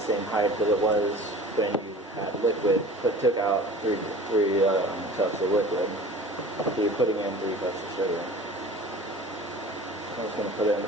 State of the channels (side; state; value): both; normal; correlation 0.42